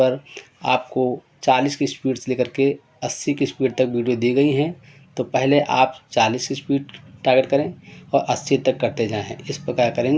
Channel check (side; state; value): both; identical; correlation 1.00